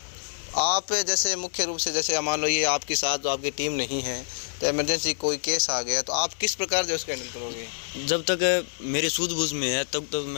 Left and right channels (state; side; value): silent; right; 59 dB below the other